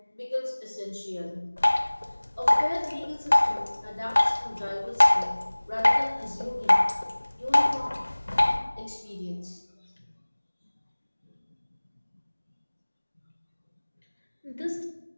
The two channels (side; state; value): both; inverted; correlation -1.00